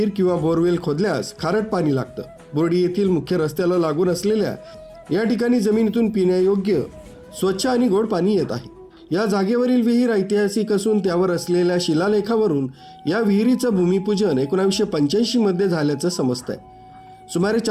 किंवा बोरवेल खोदल्यास खारट पाणी लागतं। बोर्डी येथील मुख्य रस्त्याला लागून असलेल्या या ठिकाणी जमिनीतून पिण्यायोग्य स्वच्छ आणि गोड पाणी येत आहे। या जागेवरील विहीर ऐतिहासिक असून त्यावर असलेल्या शिलालेखावरून या विहिरीचं भूमिपूजन 1985 मध्ये झाल्याचं समजतंय। सुमारे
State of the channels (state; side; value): identical; both; correlation 1.00